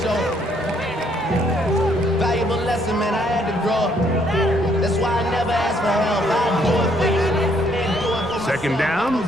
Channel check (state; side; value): normal; both; correlation 0.68